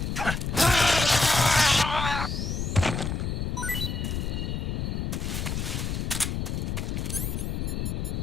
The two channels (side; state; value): left; noise; rumble, 2 dB below the sound